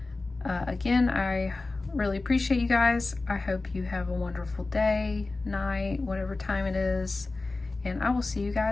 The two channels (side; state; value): right; quieter; 3.4 dB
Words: again, I really appreciate you guys. I hope you have a wonderful day, night, whatever time it is, and I will see you